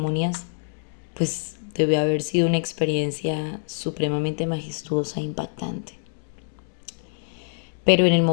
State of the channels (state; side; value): silent; right; digital silence